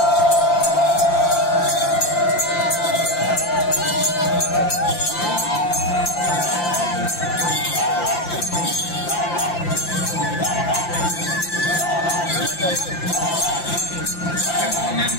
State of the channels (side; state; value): right; late; 5.8 ms